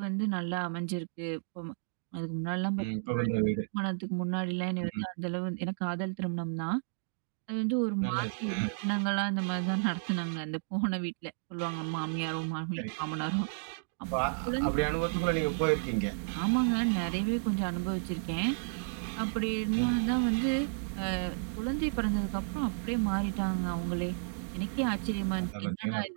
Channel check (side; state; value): left; silent; digital silence